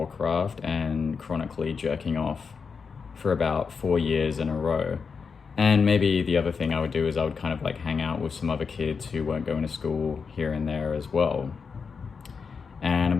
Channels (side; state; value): right; quieter; 5.5 dB